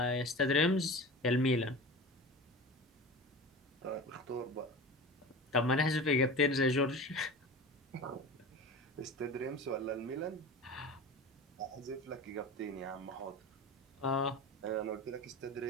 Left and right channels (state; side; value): normal; both; correlation 0.32